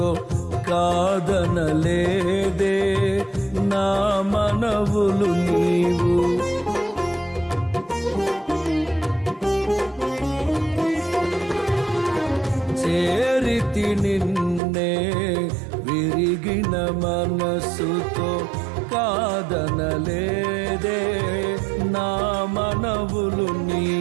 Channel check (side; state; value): left; drops out; at 14.6 s